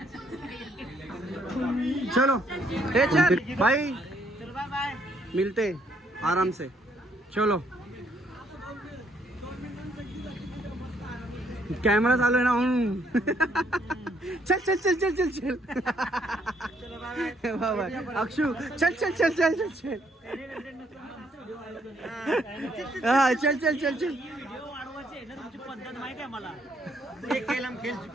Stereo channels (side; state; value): both; normal; correlation 0.69